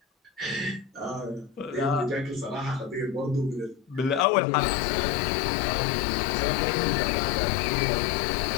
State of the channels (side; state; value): right; drops out; at 4.2 s